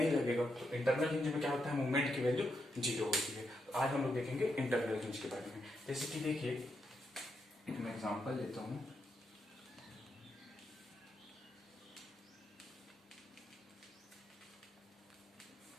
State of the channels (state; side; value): normal; both; correlation 0.82